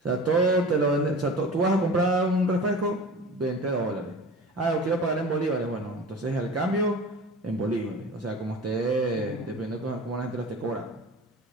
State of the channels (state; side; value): normal; both; correlation 0.37